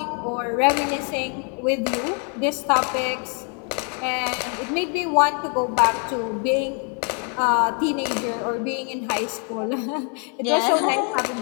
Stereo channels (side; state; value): right; quieter; 39.1 dB